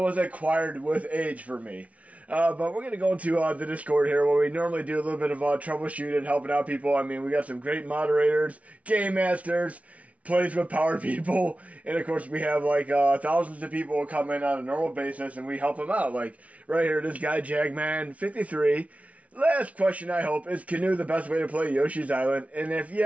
acquired with age for me. But we're going to go into the Discord here where we normally do a little bit of troubleshooting, helping out people. We got some great moderators, game masters, plays with power people, and of course we have thousands of people who come in on a normal basis and we help them out. Like right here, this guy Jagman53. Last question, I hope, is Canoe the best way to play Yoshi's Island? And if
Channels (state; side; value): late; left; 0.066 ms